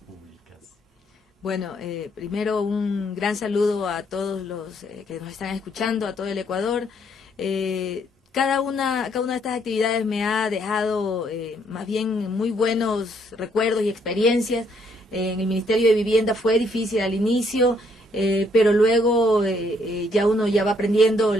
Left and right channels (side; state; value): both; normal; correlation 0.69